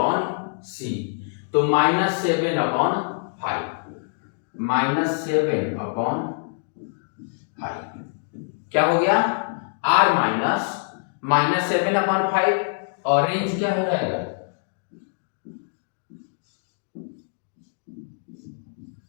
सी, तो माइनस 7 अपॉन 5, माइनस 7 अपॉन 5 क्या हो गया, आर माइनस 7 अपॉन 5, और रेंज क्या हो जाएगा,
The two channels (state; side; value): silent; right; digital silence